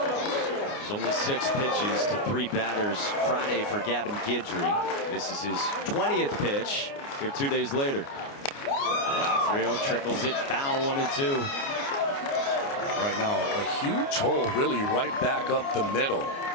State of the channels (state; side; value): late; right; 29 ms